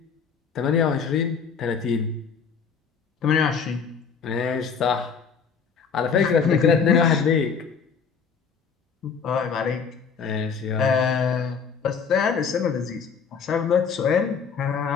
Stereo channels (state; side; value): quieter; right; 6.1 dB